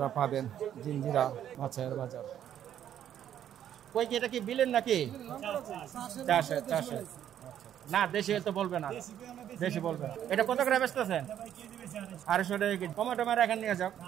পাবেন জিঞ্জিরা মাছের বাজার। কই কি এটা কি বিলেন নাকি? চাষে। না দেশি তো বলবে না, দেশি বলবে। এটা কত করে বেচতেছেন? 250 টাকা কেজি। কমে টমেটো এখানে নিয়ে যাও,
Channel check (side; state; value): left; quieter; 10.4 dB